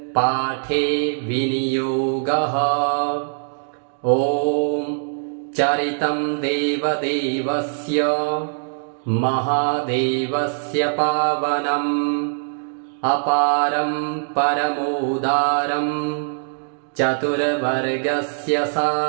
पाठे विनियोगः। ॐ चरितं देवदेवस्य महादेवस्य पावनम् अपारं परमोदारं चतुर्वर्गस्य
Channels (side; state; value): left; silent; digital silence